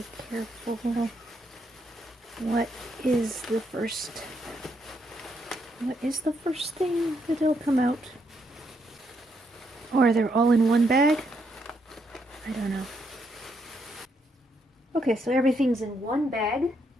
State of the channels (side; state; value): both; normal; correlation 0.76